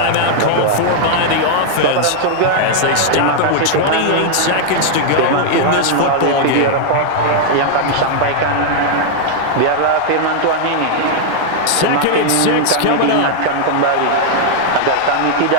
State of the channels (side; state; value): both; different; correlation -0.01